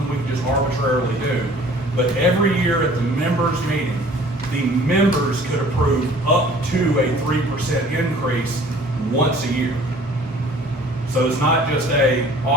we can just arbitrarily do, but every year at the members meeting, the members could approve up to a 3% increase once a year. So it's not just a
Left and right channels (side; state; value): both; normal; correlation 0.51